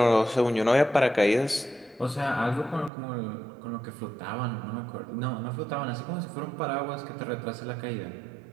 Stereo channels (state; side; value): drops out; left; at 2.9 s